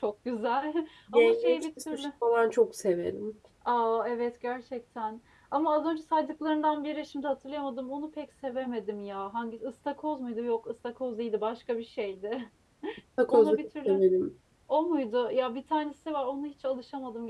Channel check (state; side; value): identical; both; correlation 1.00